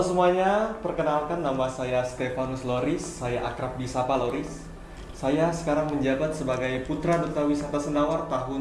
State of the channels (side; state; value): both; identical; correlation 1.00